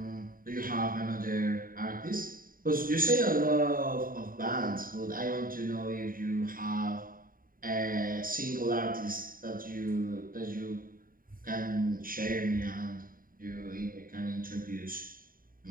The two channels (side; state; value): left; late; 0.41 ms